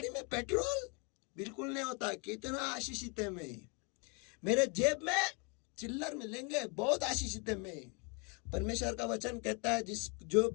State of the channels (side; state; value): right; quieter; 33.3 dB